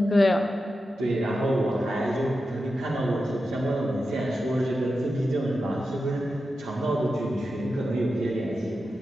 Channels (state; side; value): normal; both; correlation 0.90